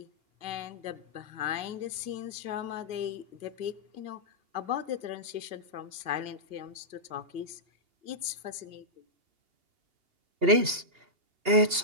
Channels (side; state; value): left; late; 2.8 ms